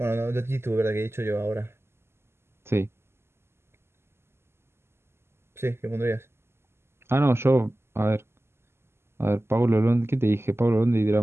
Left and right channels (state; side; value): late; left; 0.12 ms